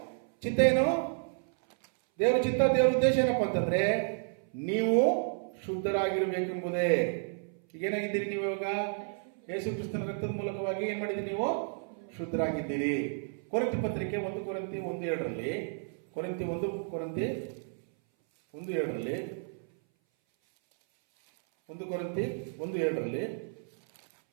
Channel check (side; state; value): left; silent; 57 dB below the other